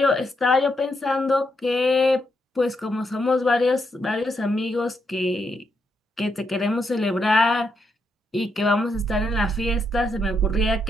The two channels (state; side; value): normal; both; correlation 0.80